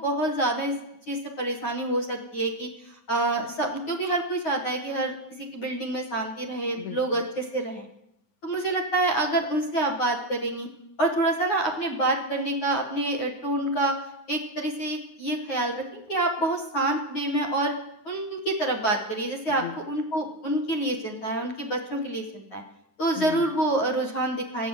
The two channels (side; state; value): right; late; 9.4 ms